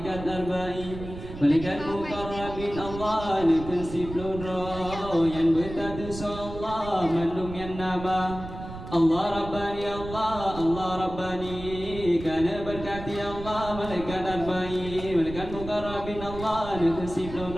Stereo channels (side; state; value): right; noise; rumble, 11 dB below the sound